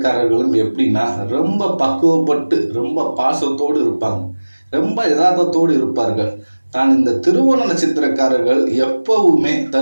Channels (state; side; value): inverted; both; correlation -1.00